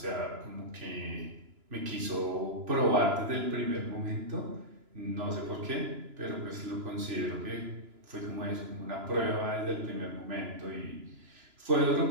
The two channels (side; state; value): left; late; 3.0 ms